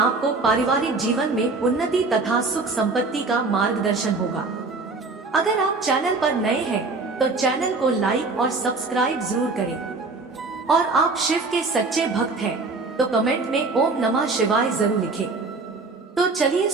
पारिवारिक जीवन में उन्नति तथा सुख संपत्ति का मार्गदर्शन होगा। अगर आप चैनल पर नए हैं तो चैनल को लाइक और सब्सक्राइब जरूर करें और आप शिव के सच्चे भक्त हैं तो कमेंट में ओम नमः शिवाय जरूर लिखें। तो चलिए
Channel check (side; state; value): left; quieter; 3.8 dB